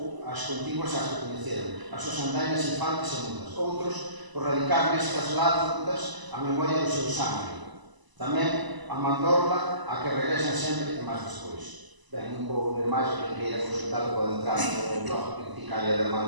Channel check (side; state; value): left; late; 1.0 ms